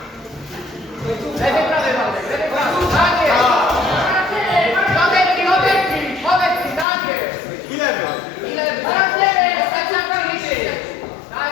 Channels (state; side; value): drops out; right; at 6.9 s